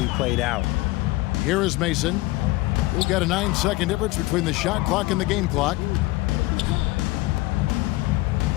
played out. Here is Mason. We've got a 9-second difference between the shot clock and the game clock.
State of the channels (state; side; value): quieter; right; 20.0 dB